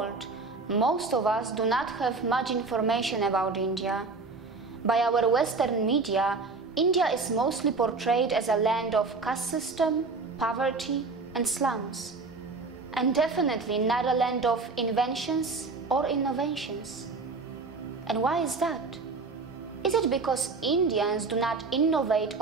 most of us do not have much information about India. By our Western media, India is mostly portrayed as a land of caste system, poverty, and slums. And definitely not a land of inventions or innovations. And why is that? Is it because Indians do not innovate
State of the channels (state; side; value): quieter; left; 4.1 dB